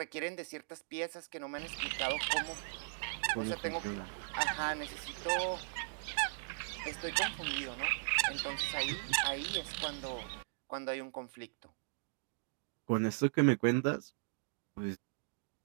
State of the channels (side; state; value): left; silent; digital silence